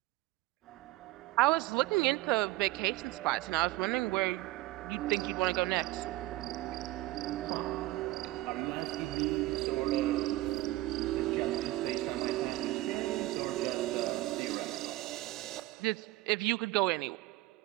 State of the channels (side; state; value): left; quieter; 18.0 dB